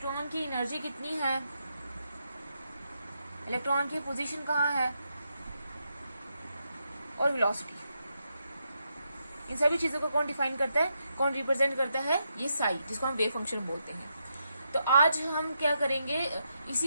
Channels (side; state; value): both; inverted; correlation -0.82